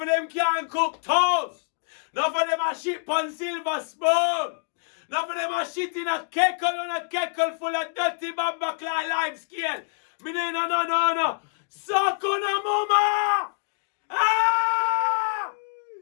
of them can't cook toast. Enough of them are shit on silver spoon. Enough of them are shit in a kettle full of dirty bumper clot live scale. Me no. Suck on a mama! Ah!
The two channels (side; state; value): right; silent; digital silence